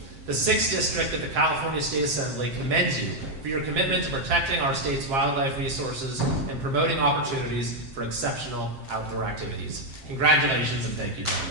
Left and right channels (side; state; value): left; late; 7.6 ms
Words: The 6th District of the California State Assembly commends you for your commitment to protecting our state's wildlife resources and promoting opportunities for exceptional outdoor activities. Congratulations and thank you, John.